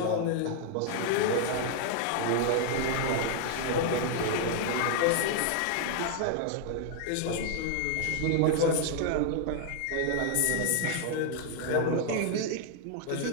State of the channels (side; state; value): both; different; correlation 0.00